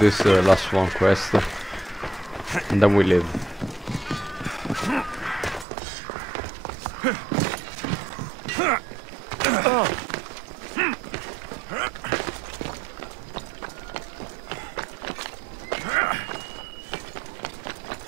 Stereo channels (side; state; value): left; drops out; at 5.7 s